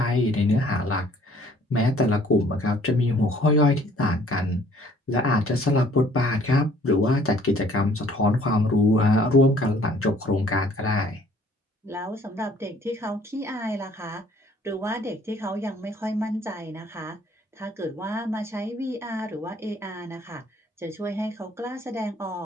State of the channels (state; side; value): normal; both; correlation 0.58